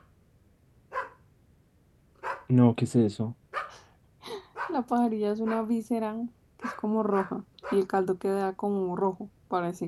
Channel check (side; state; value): both; identical; correlation 1.00